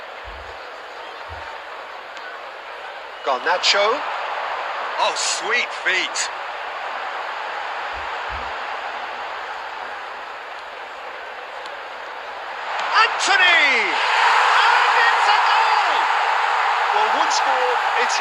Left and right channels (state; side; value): identical; both; correlation 1.00